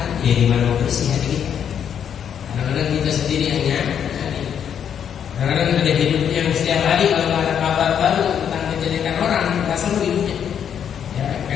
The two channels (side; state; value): right; quieter; 8.5 dB